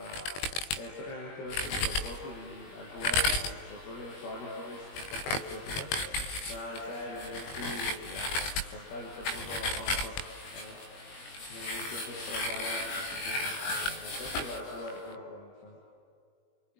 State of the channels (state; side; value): late; right; 21 ms